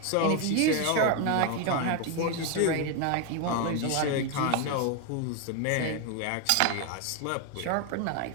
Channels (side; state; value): both; different; correlation 0.01